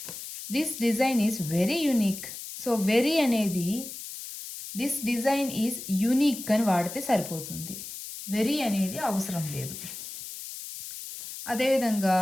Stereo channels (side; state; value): left; noise; hiss, 10 dB below the sound